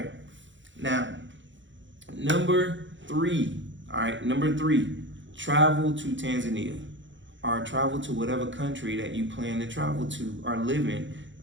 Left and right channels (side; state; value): left; late; 0.54 ms